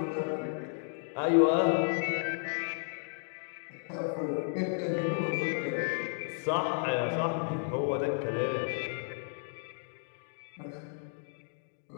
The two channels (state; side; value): silent; right; digital silence